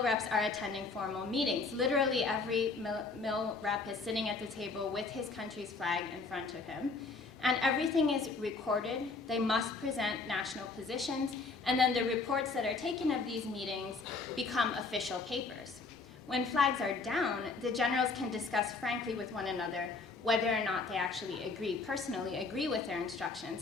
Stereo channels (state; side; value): quieter; right; 4.1 dB